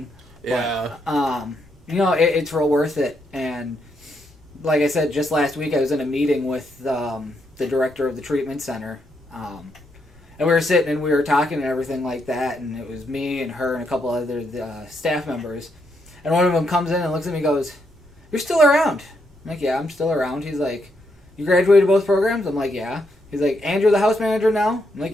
Yeah. it's real worth it. And like I said, just last week I was in a meeting with the director of the treatment center. And we were sitting and we were talking and everything like that. And it was me and her and a couple other staff members. And one of them comes in and looks at me and goes, "You're still around?" I'm like, "Yeah, I'm still around." He's like, "You graduated both programs?" I'm like, "Yeah." He's like, "And you're the house manager now?" I'm like,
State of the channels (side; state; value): both; normal; correlation 0.78